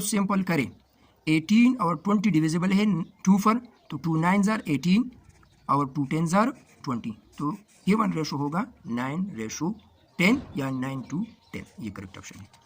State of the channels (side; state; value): both; identical; correlation 1.00